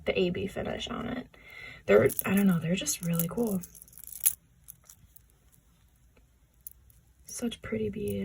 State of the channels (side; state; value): both; identical; correlation 1.00